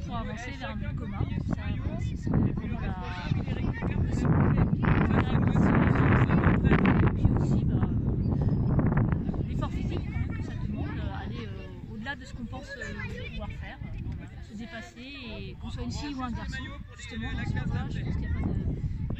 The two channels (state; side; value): identical; both; correlation 1.00